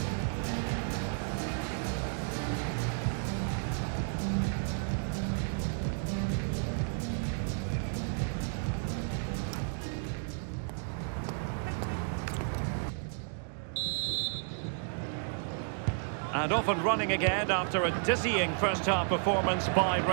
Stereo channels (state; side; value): silent; left; 56 dB below the other